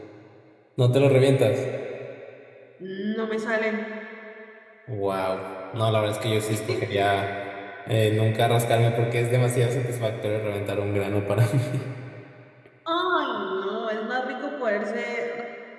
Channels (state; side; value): identical; both; correlation 1.00